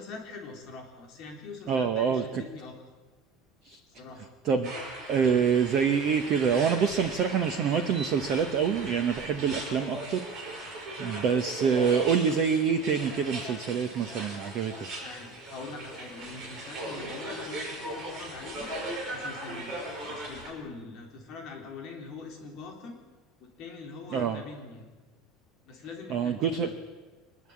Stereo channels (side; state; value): left; quieter; 5.6 dB